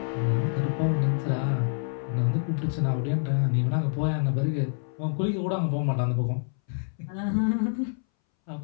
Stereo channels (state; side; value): silent; right; 60 dB below the other